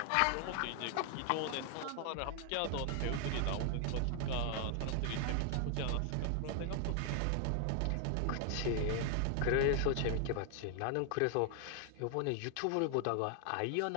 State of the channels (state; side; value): different; both; correlation 0.00